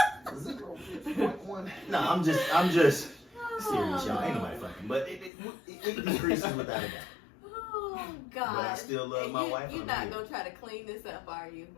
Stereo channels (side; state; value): right; drops out; at 5.3 s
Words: 0.1. No, I'm just serious, y'all. Ain't nobody fucking, but it decreases without a doubt. Oh God! But I still love my wife. You're I'm not here. gonna try to clean this up, are you?